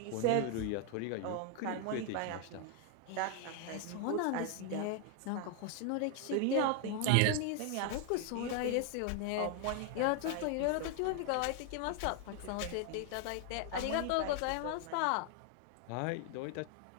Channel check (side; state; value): both; different; correlation 0.00